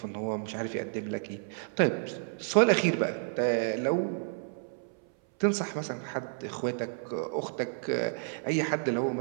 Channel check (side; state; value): left; silent; 57 dB below the other